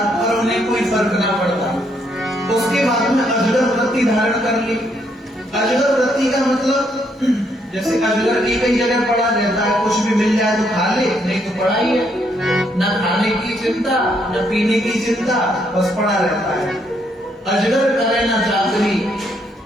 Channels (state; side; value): normal; both; correlation 0.73